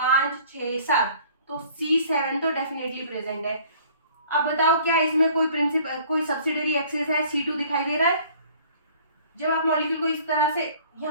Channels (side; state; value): both; inverted; correlation -0.53